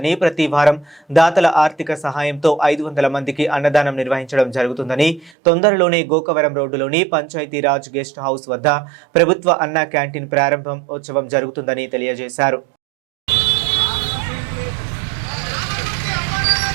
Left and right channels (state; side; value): drops out; left; at 5.3 s